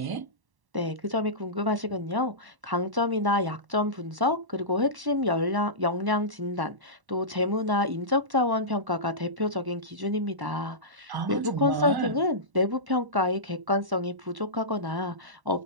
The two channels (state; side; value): late; left; 1.1 ms